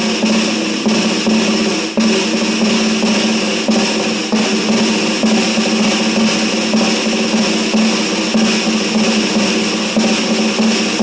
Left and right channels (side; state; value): both; identical; correlation 1.00